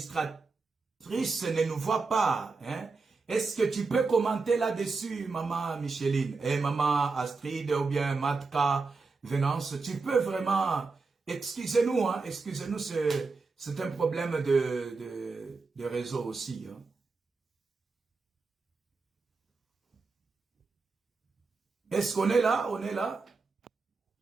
ne nous voit pas. Hein? Est-ce que tu peux commenter là-dessus, maman Micheline? Et maman Astrid ou bien Matka Venance, tu peux vraiment... Excusez-nous, hein? Excusez-nous, c'est un problème de réseau aussi. Hein? Est-ce qu'on est là? On est là?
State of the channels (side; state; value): left; quieter; 4.2 dB